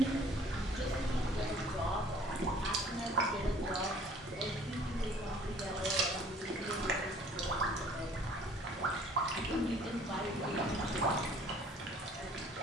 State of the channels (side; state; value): both; normal; correlation 0.54